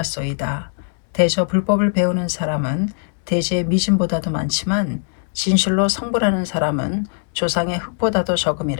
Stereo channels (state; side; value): silent; right; digital silence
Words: 대저 불법을 배우는 사람은 대지의 미진보다도 많지만 진실로 성불하는 사람은 조상의 흙보다도